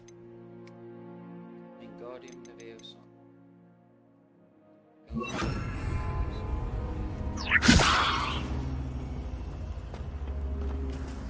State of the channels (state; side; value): identical; both; correlation 1.00